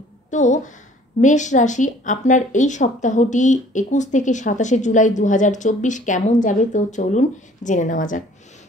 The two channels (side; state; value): both; normal; correlation 0.54